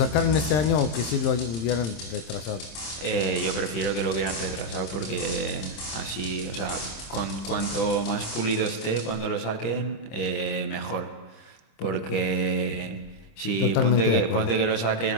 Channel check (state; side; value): late; right; 26 ms